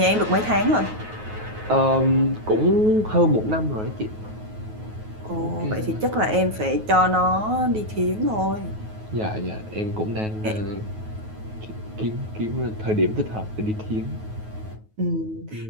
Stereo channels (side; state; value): left; late; 9.3 ms